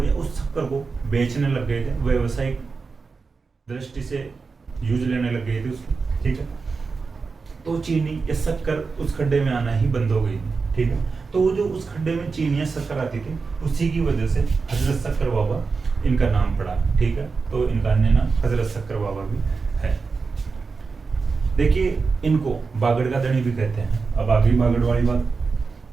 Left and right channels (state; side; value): quieter; left; 4.6 dB